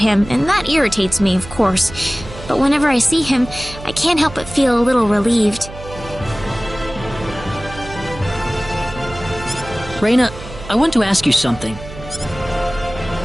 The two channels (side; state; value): right; noise; hum, 14 dB below the sound